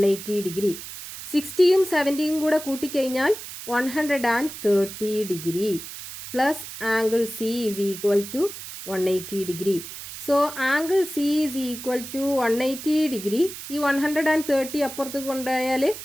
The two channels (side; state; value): right; noise; hiss, 11 dB below the sound